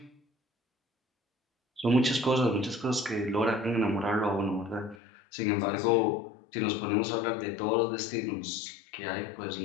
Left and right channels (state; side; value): drops out; right; at 5.0 s